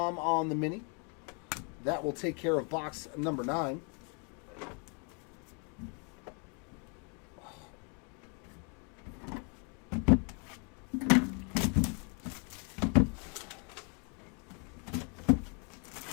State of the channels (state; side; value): quieter; right; 36.7 dB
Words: on the mini. That will take care of box number 9.